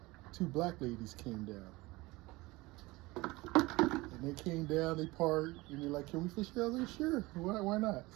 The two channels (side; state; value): left; quieter; 21.5 dB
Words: 2 black ladies came down. And they came down, they parked, and they're like, "Can we fish here?" I was like, "Sure, why not?"